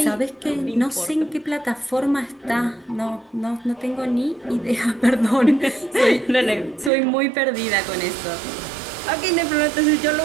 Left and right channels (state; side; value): drops out; left; at 6.9 s